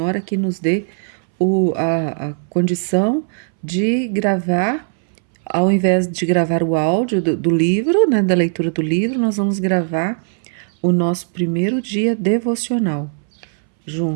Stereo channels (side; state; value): left; silent; 64 dB below the other